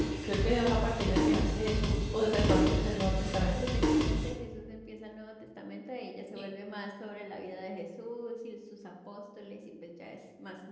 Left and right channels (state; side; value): identical; both; correlation 1.00